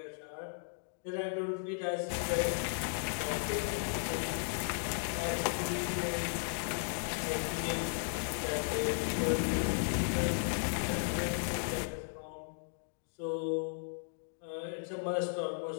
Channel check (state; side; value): silent; right; digital silence